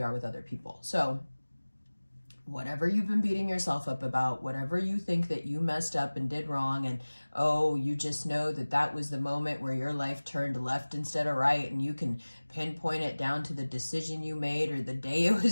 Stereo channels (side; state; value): both; inverted; correlation -1.00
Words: are with other people. So whatever you've been beating yourself up about, whatever you think that you messed up and did wrong, and oh, you just know that that was the moment where your life turned left instead of right, and you can pinpoint it down to the decision you made or the day it